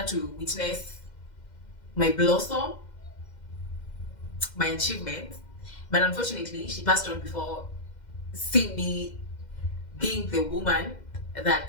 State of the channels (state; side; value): late; right; 2.1 ms